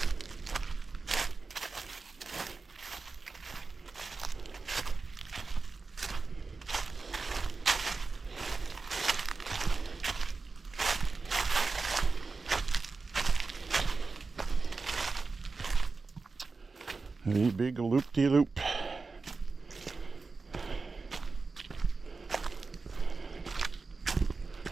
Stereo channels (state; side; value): quieter; left; 4.2 dB